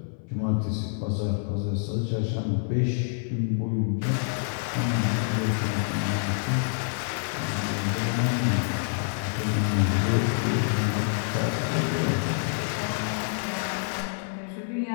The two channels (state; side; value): silent; right; 60 dB below the other